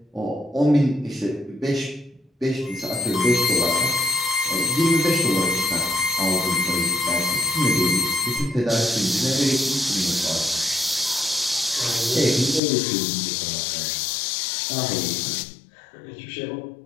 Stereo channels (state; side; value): drops out; right; at 12.6 s